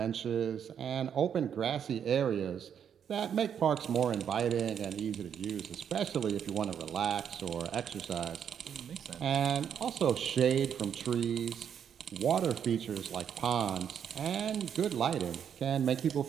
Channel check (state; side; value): quieter; left; 8.3 dB